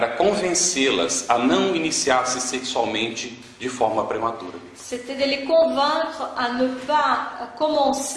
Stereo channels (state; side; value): identical; both; correlation 1.00